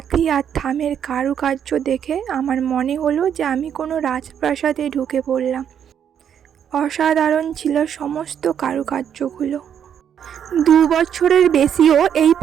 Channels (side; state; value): left; quieter; 8.7 dB